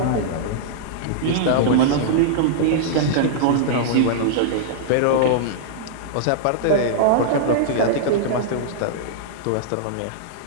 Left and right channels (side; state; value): both; different; correlation -0.02